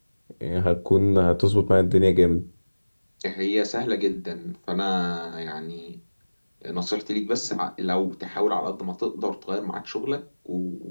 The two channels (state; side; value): inverted; both; correlation -1.00